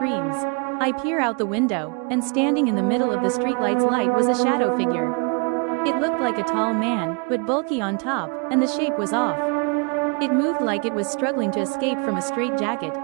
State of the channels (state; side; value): quieter; left; 34.7 dB